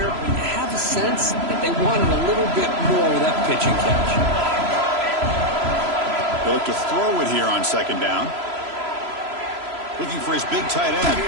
but you have a sense that they wanted a little bit more with that pitch and catch. They look to throw it here on second down. Looking for his big tight end.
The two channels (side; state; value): left; late; 3.0 ms